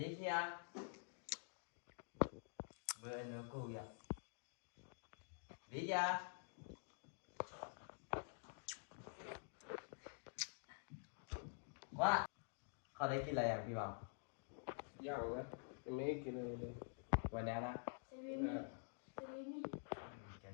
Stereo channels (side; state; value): right; silent; digital silence